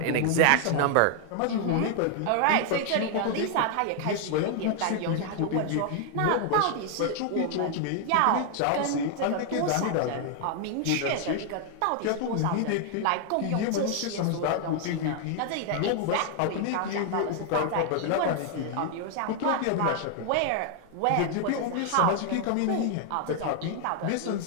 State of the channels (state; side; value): different; both; correlation 0.00